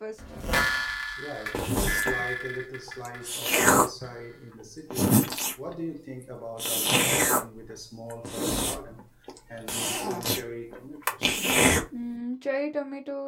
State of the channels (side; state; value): both; identical; correlation 1.00